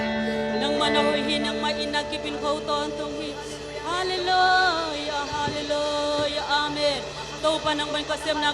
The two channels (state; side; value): identical; both; correlation 1.00